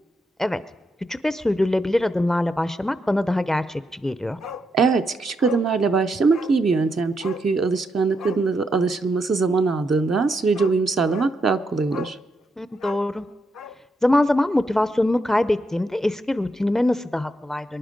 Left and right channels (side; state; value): both; normal; correlation 0.81